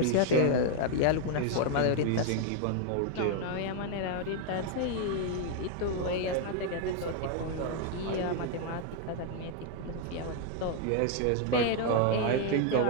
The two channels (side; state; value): both; different; correlation 0.00